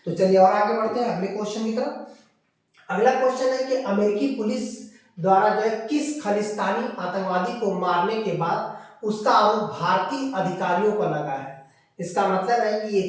तो चलिए और आगे बढ़ते हैं अगले क्वेश्चन की तरफ। अगला क्वेश्चन है कि अमेरिकी पुलिस द्वारा जो है किस खालिस्तानी आतंकवादी को मारने के बाद उसका आरोप भारतीय अधिकारियों पर लगा है? इसका मतलब है कि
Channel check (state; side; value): identical; both; correlation 1.00